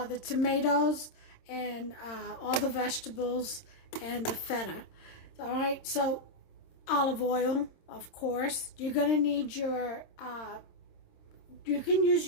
the tomatoes and all the vegetables and the feta. All right, so olive oil, of course. You're going to need your, you can use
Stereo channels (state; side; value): late; right; 26 ms